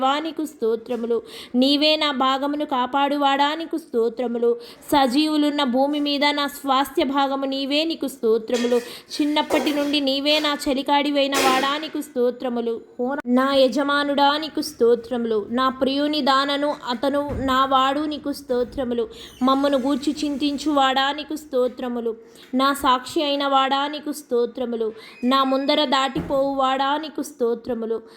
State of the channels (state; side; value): identical; both; correlation 1.00